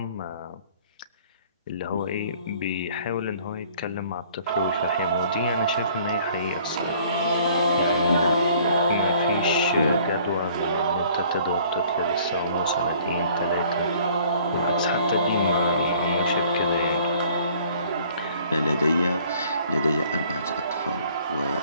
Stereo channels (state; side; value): inverted; both; correlation -0.55